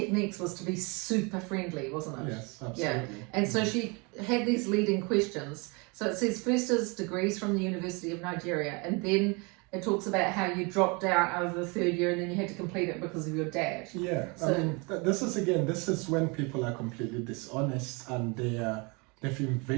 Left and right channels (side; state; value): left; quieter; 29.7 dB